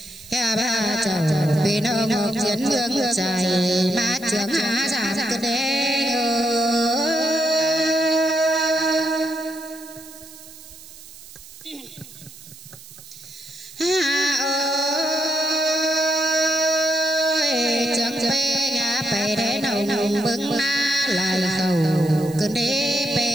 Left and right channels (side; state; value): right; noise; hiss, 18 dB below the sound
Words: ba chầu bên nông chiến mương trời mà trước giảm cơn đê